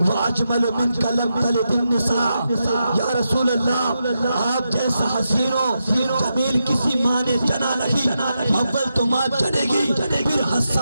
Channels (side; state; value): both; inverted; correlation -0.86